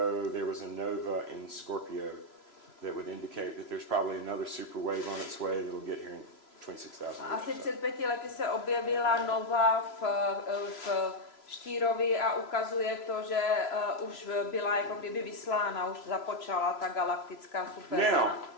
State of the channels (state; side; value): late; right; 3.0 ms